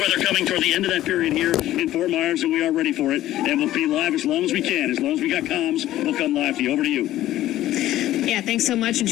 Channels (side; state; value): right; quieter; 14.1 dB